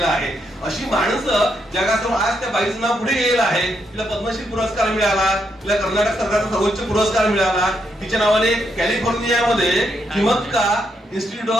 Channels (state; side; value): normal; both; correlation 0.79